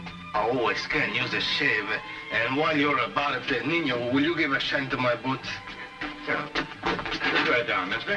always can use a shave. And while you're about it, Nino, will you give a shine to my boots? Yeah. Put that down,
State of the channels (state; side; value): identical; both; correlation 1.00